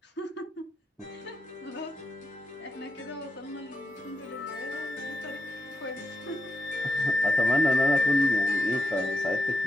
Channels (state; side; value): normal; both; correlation 0.87